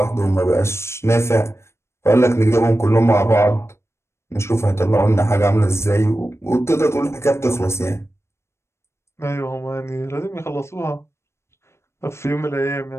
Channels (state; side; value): late; right; 0.13 ms